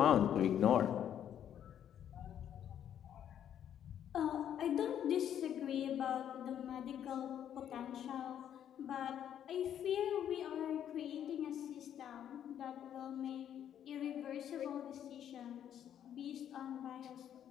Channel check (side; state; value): right; quieter; 9.9 dB